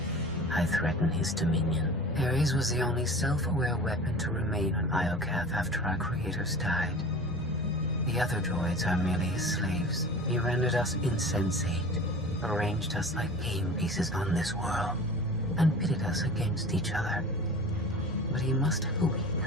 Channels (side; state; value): both; normal; correlation 0.37